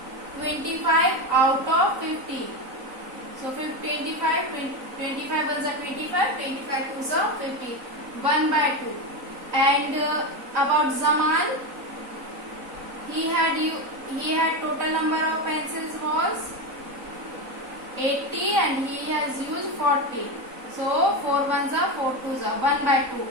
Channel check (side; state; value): left; late; 3.9 ms